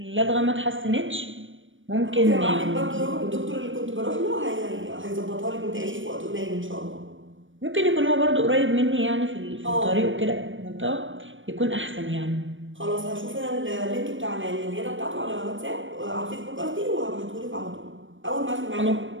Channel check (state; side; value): late; left; 0.56 ms